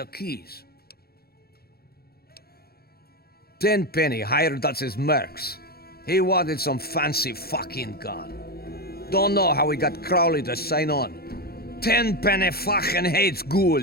keys. Tenpenny hired us as mercs. He wanted some fancy fucking gun. Don't know how he got Crowley to sign on. Tenpenny fucking hates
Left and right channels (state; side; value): late; right; 0.45 ms